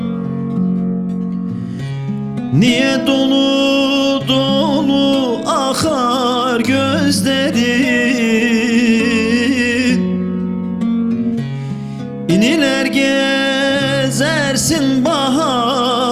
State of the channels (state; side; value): identical; both; correlation 1.00